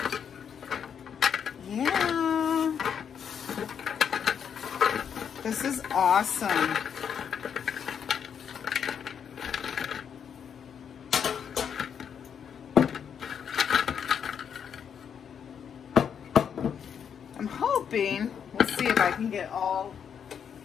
Yeah. This is awesome. I can get all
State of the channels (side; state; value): right; quieter; 7.7 dB